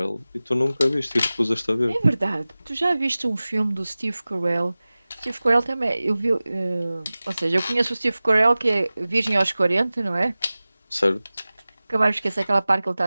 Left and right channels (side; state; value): both; inverted; correlation -0.98